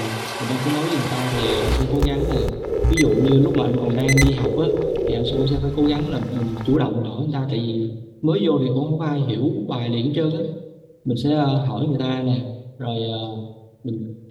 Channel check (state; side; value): identical; both; correlation 1.00